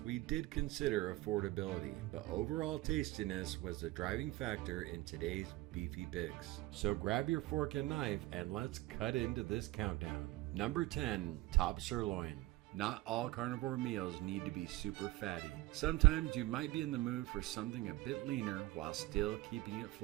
did consider affordability, but overall tastiness was the driving factor in today's beefy picks. So grab your fork and knife and let's cut into this countdown. Number 10, top sirloin. Not all carnivore meals need to be super fatty. Sometimes you might be in the mood for something a bit leaner while still keeping it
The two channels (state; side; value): quieter; left; 19.0 dB